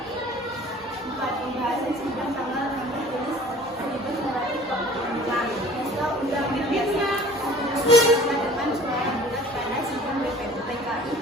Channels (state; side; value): normal; both; correlation 0.48